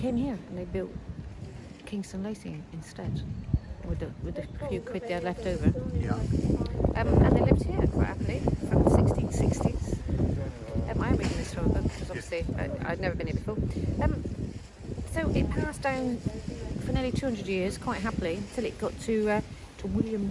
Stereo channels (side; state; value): both; identical; correlation 1.00